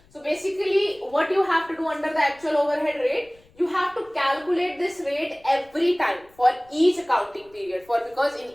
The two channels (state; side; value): noise; left; rumble, 30 dB below the sound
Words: So basically what you have to do under the actual overhead rate, you have to calculate this rate every time for each accounting period, because in